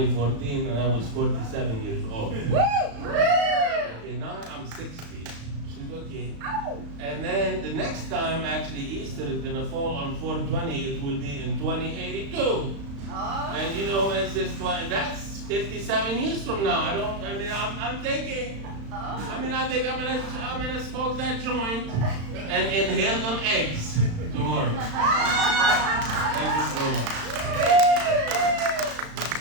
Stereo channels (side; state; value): left; late; 35 ms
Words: and I was 47 years old. Okay, now I'm 60. okay. And then the next time, actually, Easter is going to fall on 420. It will be in 2082. Oh. And you know, it's just like, that's 57 years from now. I'm thinking, I think I'm gonna smoke that joint and inhale them eggs tomorrow. Thank you so much.